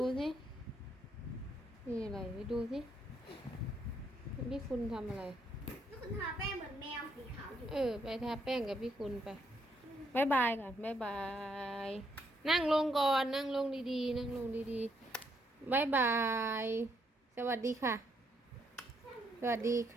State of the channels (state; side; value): normal; both; correlation 0.74